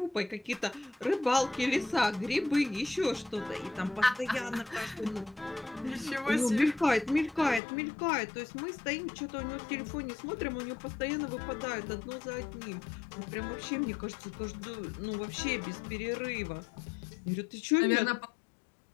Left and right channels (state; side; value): drops out; right; at 7.6 s